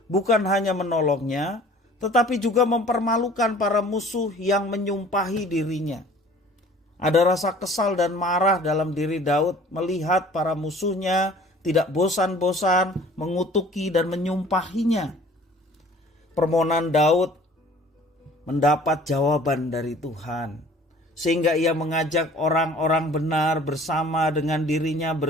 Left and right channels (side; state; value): both; normal; correlation 0.50